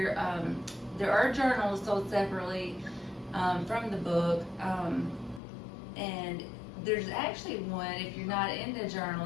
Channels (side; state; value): right; drops out; at 5.4 s